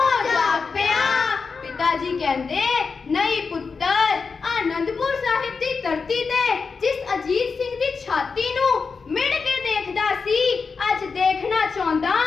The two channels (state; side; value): quieter; right; 5.0 dB